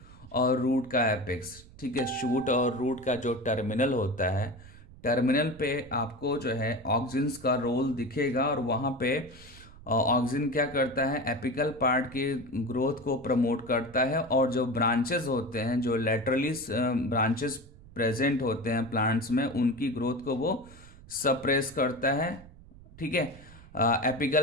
और रूट का एपिक्स। ठीक है, शूट और रूट का जो टर्मिनल होता है, टर्मिनल पे आपको जो है ऑक्सिन्स का रोल दिखेगा, और वहाँ पे ऑक्सिन क्या करता है, एपिकल पार्ट के ग्रोथ को प्रमोट करता है, और जो ब्रांचेस होते हैं, जो लेटरली ब्रांचेस प्रेजेंट होते हैं प्लांट्स में, उनकी ग्रोथ को वो सप्रेस करता है। ठीक है,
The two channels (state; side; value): noise; right; rumble, 20 dB below the sound